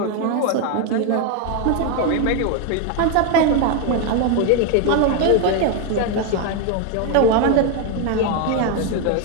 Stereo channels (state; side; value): different; both; correlation 0.01